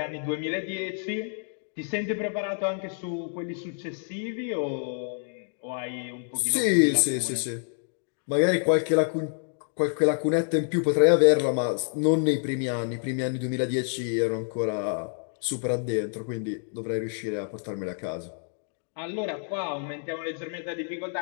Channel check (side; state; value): right; silent; 59 dB below the other